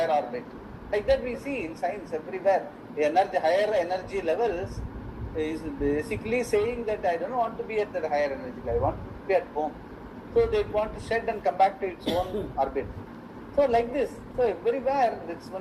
orbit. Like that we see in science everywhere. Higher energy levels is basically saying that I don't want to be at that higher energy level, I want to be at home. So they want to shed and come back to its own orbit. So like this, so everywhere it's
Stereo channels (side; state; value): both; identical; correlation 1.00